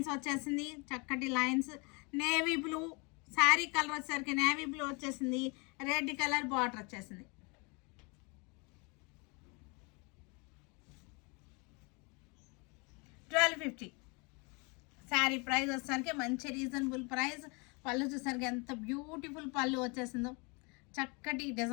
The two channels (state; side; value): quieter; right; 30.5 dB